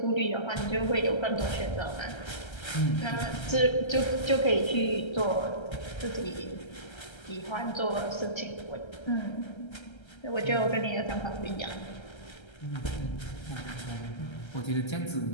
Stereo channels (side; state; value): right; late; 1.3 ms